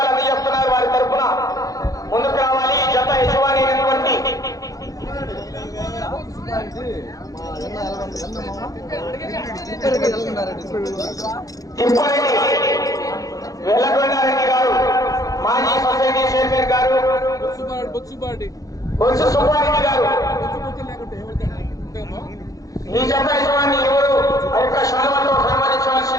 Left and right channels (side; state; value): right; late; 0.17 ms